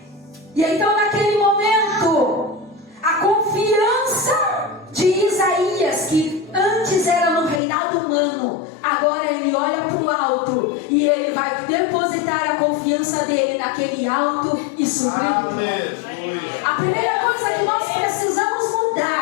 E então naquele momento, a confiança de Isaías, que antes era no reinado humano, agora ele olha para o alto e ele vai depositar a confiança dele naquele alto e sublime. A primeira coisa que nós precisamos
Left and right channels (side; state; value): right; drops out; at 7.6 s